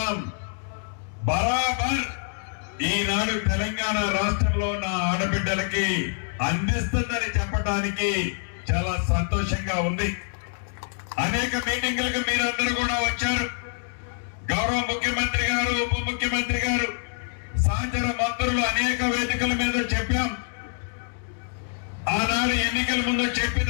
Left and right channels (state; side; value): silent; right; 61 dB below the other